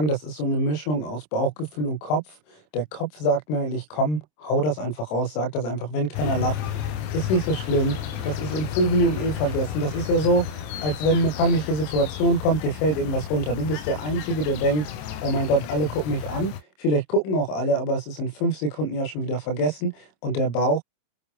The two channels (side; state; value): right; late; 27 ms